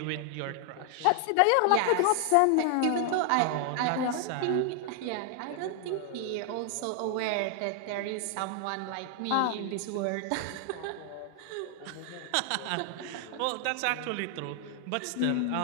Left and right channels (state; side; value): different; both; correlation 0.00